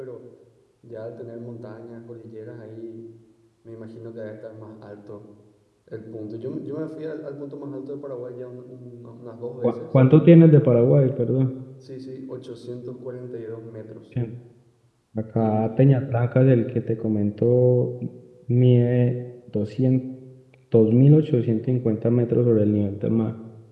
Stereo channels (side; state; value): both; identical; correlation 1.00